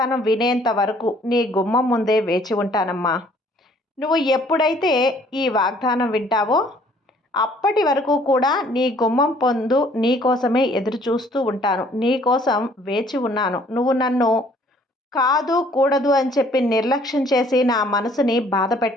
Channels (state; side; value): normal; both; correlation 0.59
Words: వినేంత వరకు నీ గుమ్మం ముందే వేచి ఉంటానమ్మా. నువ్వు ఎప్పుడైతే ఈ వాగ్దానం వింటావో అప్పటి వరకు కూడా నీ గుమ్మం పొందు నీ కోసమే ఎదురు చూస్తూ ఉంటాను, నీ కోసం వేచి ఉన్నాను. నువ్వు నన్ను కాదు కూడదు అని చెప్పి నిర్లక్ష్యం చేసి నా మనసుని బాధ